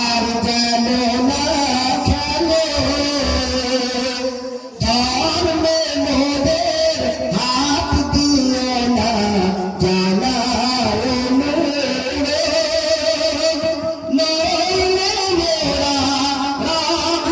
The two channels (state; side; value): identical; both; correlation 1.00